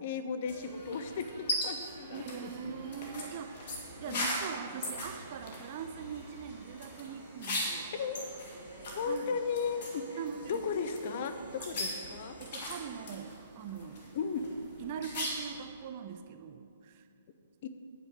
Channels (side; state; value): both; inverted; correlation -0.48